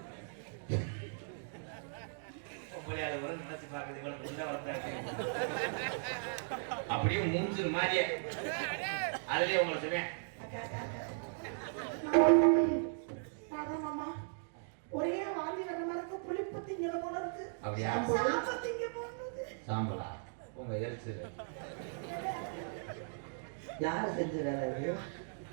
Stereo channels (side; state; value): left; silent; digital silence